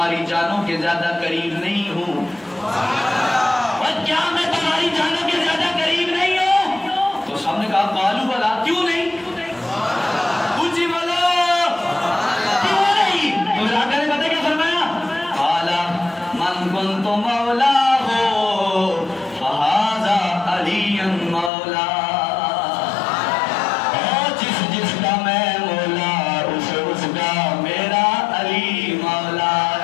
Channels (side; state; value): right; drops out; at 21.5 s